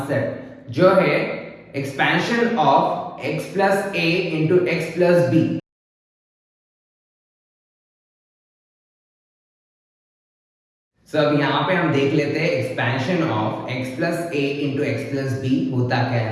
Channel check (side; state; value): both; identical; correlation 1.00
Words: जो है expansion of x plus a into x plus b. So अब यहाँ पे हम देख लेते हैं expansion of x plus a into x plus b होता क्या